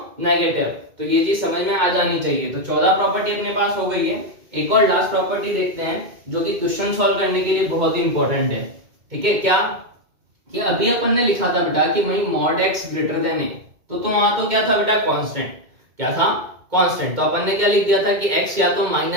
नेगेटिव। तो ये चीज समझ में आ जानी चाहिए। तो 14 प्रॉपर्टी अपने पास हो गई है। एक और लास्ट प्रॉपर्टी देखते हैं जो कि क्वेश्चन सॉल्व करने के लिए बहुत ही इंपॉर्टेंट है। ठीक है, क्या कि अभी अपन ने लिखा था बेटा कि वही मॉड x ग्रेटर देन ए, तो वहां तो क्या था बेटा, कांस्टेंट। क्या था, कांस्टेंट। तो अपन ने क्या लिख दिया था कि x या तो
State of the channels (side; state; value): left; late; 2.1 ms